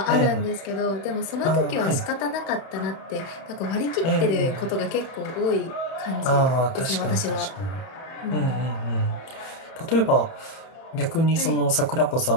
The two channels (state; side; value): late; right; 31 ms